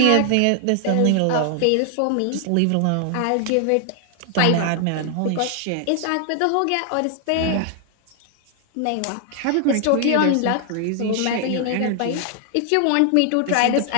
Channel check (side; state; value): both; different; correlation 0.00